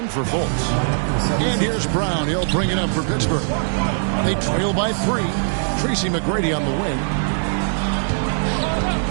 for Fultz. And here's Brown. He'll bring it up for Pittsburgh. They trail by 3. Tracy McGrady on the wing.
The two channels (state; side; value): silent; left; digital silence